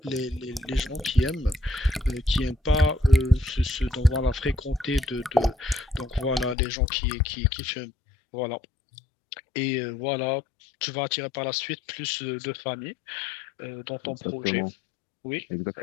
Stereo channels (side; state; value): right; drops out; at 6.6 s